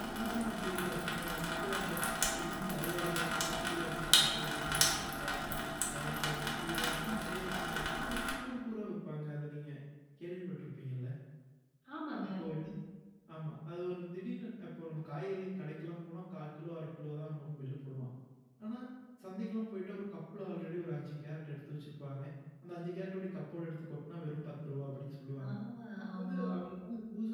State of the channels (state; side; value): identical; both; correlation 1.00